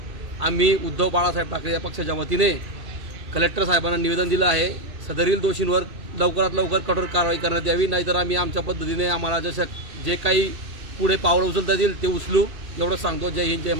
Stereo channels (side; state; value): left; late; 2.6 ms